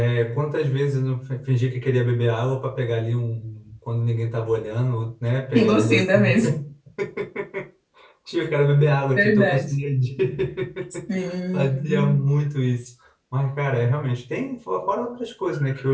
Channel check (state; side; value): identical; both; correlation 1.00